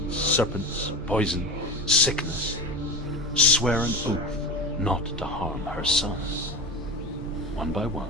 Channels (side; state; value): both; normal; correlation 0.27